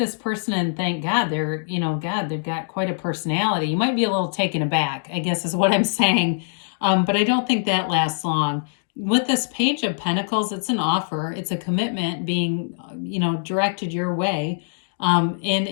person and think, God, they've got quite a personality. You might be a little taken aback, I guess is what I'm saying. But I don't think that lasts long. With this Page of Pentacles, it's an offer. It's a commitment being, directed your way. And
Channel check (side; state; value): right; silent; digital silence